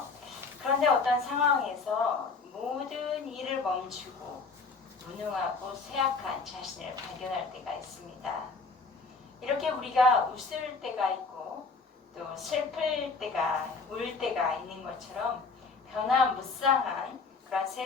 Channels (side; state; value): right; quieter; 4.3 dB